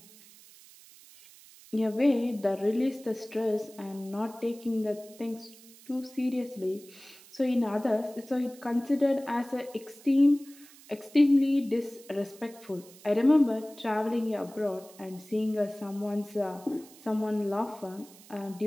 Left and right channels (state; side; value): noise; right; hiss, 22 dB below the sound